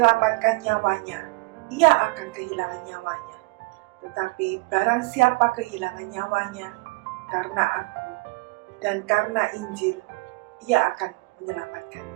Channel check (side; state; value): left; quieter; 26.1 dB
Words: nyawanya, ia akan kehilangan nyawanya. Tetapi barang siapa kehilangan nyawanya karena aku dan karena Injil, ia akan